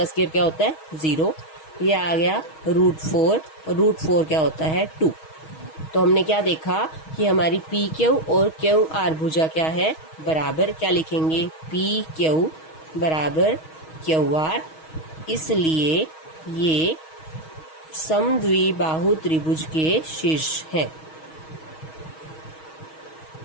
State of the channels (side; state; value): right; late; 6.3 ms